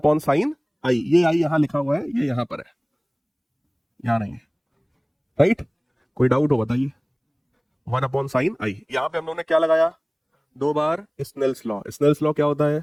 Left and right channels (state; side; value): identical; both; correlation 1.00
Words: साइन आई। ये आई यहां लिखा हुआ है, ये यहां पर है, यहां नहीं है, राइट? कोई डाउट हो बताइए। 1 अपॉन साइन आई, यहां पे हम लोगों ने क्या लगाया? 2 बार स्नेल्स लॉ। स्नेल्स लॉ क्या होता है?